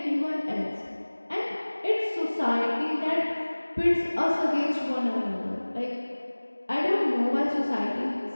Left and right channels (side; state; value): both; inverted; correlation -1.00